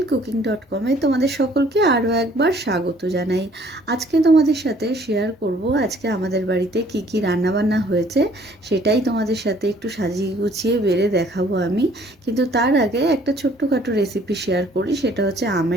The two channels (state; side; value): normal; both; correlation 0.58